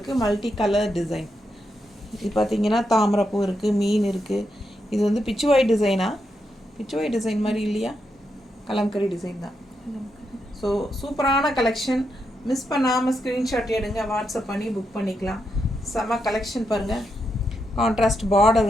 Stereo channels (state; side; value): normal; both; correlation 0.83